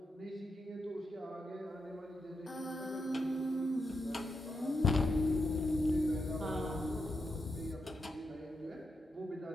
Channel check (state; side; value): normal; both; correlation 0.84